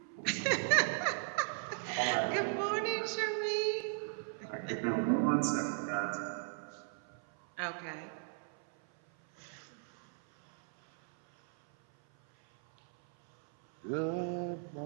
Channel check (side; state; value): left; silent; 54 dB below the other